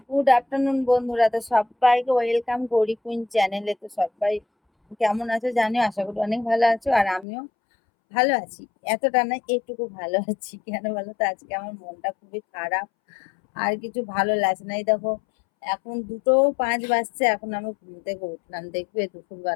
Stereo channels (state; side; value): drops out; right; at 7.2 s